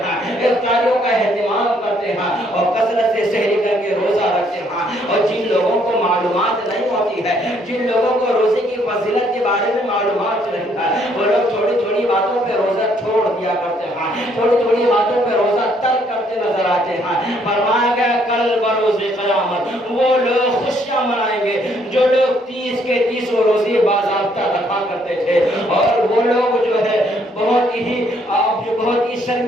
افطاریوں کا اہتمام کرتے ہیں اور کثرت سے سحری کر کے روزہ رکھتے ہیں. اور جن لوگوں کو معلومات نہیں ہوتی ہے, جن لوگوں کو روزے کی فضیلت کے بارے میں معلومات نہیں ہے, وہ لوگ تھوڑی تھوڑی باتوں پہ روزہ چھوڑ دیا کرتے ہیں, تھوڑی تھوڑی باتوں پہ روزہ ترک کرتے نظر آتے ہیں. فرمایا گیا کل بروز قیامت وہ لوگ خوشیاں منائیں گے جو لوگ 30 کے 30 روزے باضابطہ رکھا کرتے تھے, اور وہ لوگ جو ہے بہت ہی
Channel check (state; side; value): normal; both; correlation 0.68